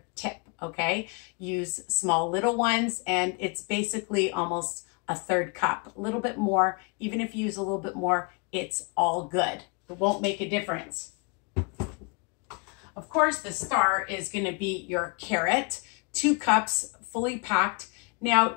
tip, okay? Use small little ones, and it's basically almost a 1/3 cup, a little bit more. Even if you use a little bit more, it's all good. It won't make a difference. Of course, the star is gonna be your carrot, 2 cups fully packed. Now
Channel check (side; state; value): right; quieter; 32.6 dB